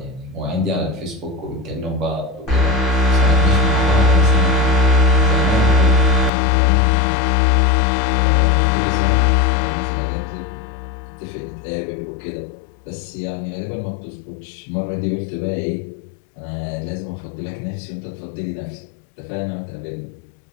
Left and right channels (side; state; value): right; drops out; at 6.3 s